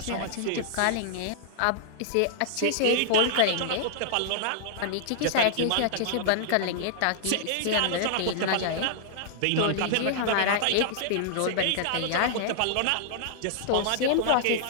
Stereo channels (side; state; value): both; different; correlation -0.01